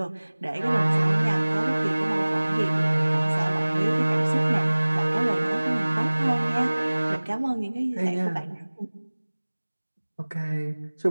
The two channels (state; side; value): inverted; both; correlation -1.00